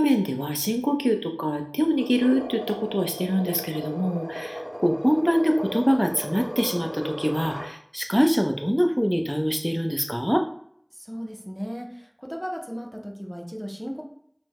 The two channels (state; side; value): identical; both; correlation 1.00